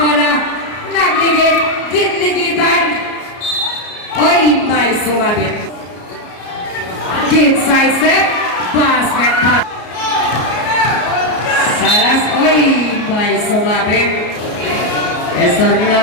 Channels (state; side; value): late; right; 33 ms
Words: bola. Nagligid. Ginligitan. Oy, may sumabit. Inside step. Basket pass. Salas. Oy, may sumabit.